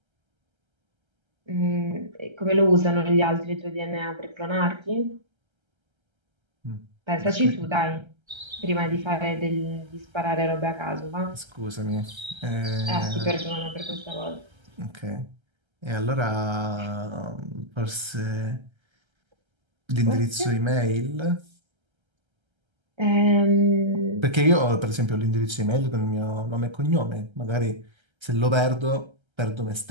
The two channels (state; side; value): late; left; 1.3 ms